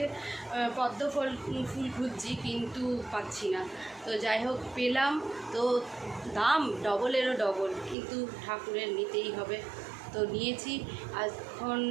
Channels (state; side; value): drops out; left; at 8.0 s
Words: পদ্ম ফুল খুঁজছি, কিন্তু পাচ্ছি না। তো যাই হোক পেলাম, তো দাম ডবলেরও ডবল, কিন্তু ঠাকুরের নিতেই হবে, তো নিয়েছি। এখন